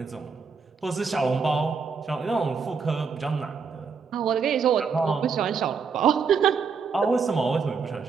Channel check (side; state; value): left; quieter; 5.5 dB